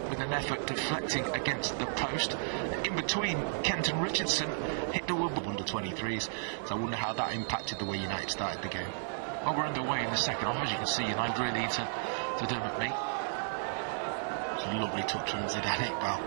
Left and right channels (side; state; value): left; silent; digital silence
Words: with an effort deflecting against the post. In between, Kenton Richardson hit the woodwork. Under 23s, so I wonder how that impacted the way United started the game. Well, we're underway in the second half, as you can see. United really to Dermot Mee. Lovely touch from Zidane Iqbal.